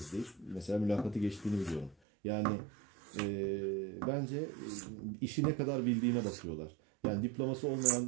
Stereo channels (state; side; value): drops out; left; at 2.0 s